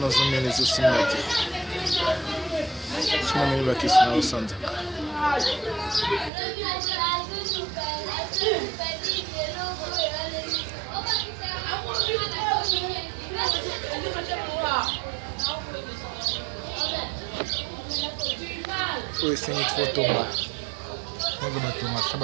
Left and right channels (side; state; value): left; drops out; at 6.3 s